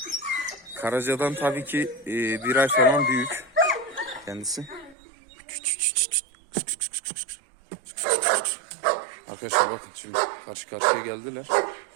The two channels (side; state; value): left; drops out; at 5.0 s